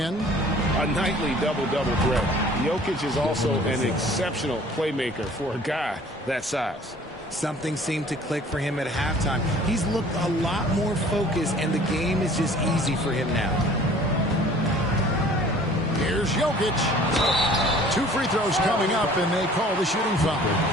A nightly double-double threat. Jokic is also an exceptional playmaker for a guy that size. Something seemed to click for him at halftime. He's looked a lot more focused, and the game is just easy for him now. Here's Jokic. 2 free throws coming up, and they call the shooting foul.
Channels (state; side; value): normal; both; correlation 0.51